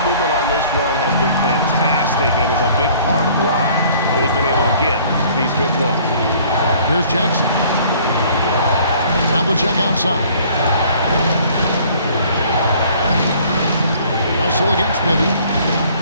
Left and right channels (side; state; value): both; inverted; correlation -0.55